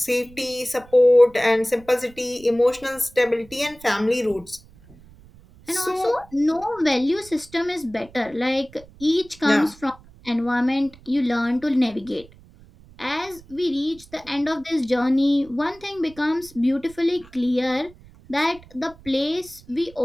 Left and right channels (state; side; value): noise; right; rumble, 24 dB below the sound